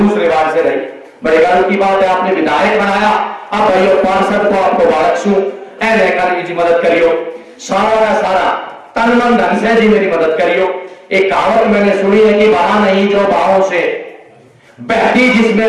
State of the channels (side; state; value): both; identical; correlation 1.00